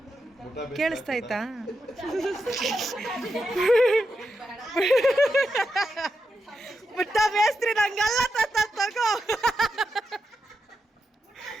ಕೇಳಿಸ್ತಾಯ್ತಾ? ಮುಟ್ಟ ಬೇಸ್ತ್ರಿ ನಂಗಲ್ಲ ತಗೋ.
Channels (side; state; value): both; normal; correlation 0.86